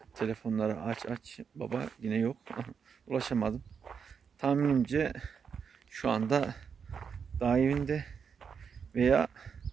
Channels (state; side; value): quieter; left; 6.5 dB